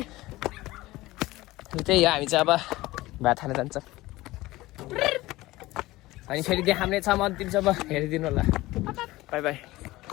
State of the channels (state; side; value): quieter; right; 18.6 dB